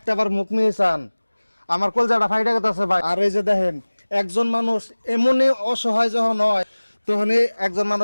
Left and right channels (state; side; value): inverted; both; correlation -1.00